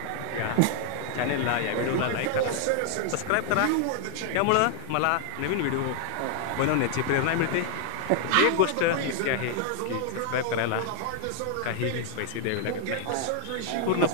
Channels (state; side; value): different; both; correlation 0.00